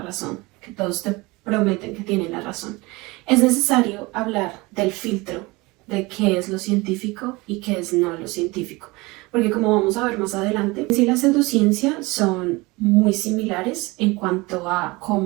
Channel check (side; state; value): left; quieter; 23.4 dB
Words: razón, que todos te prometen que tienen la razón, es necesario hablar del filtro de qué es lo científico y qué es no lo científico. Porque como vamos a ver más adelante, sí, la pseudociencia son muy similares en cuanto a